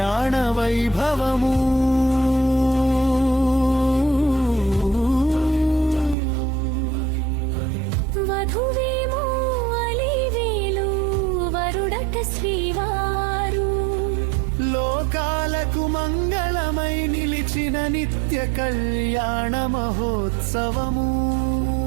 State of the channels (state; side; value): drops out; left; at 6.2 s